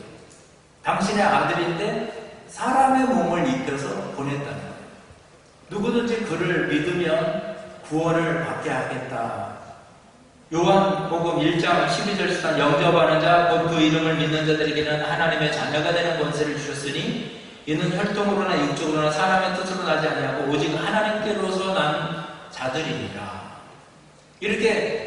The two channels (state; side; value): identical; both; correlation 1.00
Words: 당신의 아들인데 사람의 몸을 입혀서 보냈다는 거예요. 누구든지 그를 믿으면 구원을 받게 하겠다. 요한복음 1장 12절 13 영접하는 자 곧 그 이름을 믿는 자들에게는 하나님의 자녀가 되는 권세를 주셨으니 이는 혈통으로나 육적으로나 사람의 뜻으로 나지 아니하고 오직 하나님께로서 난 자들이니라.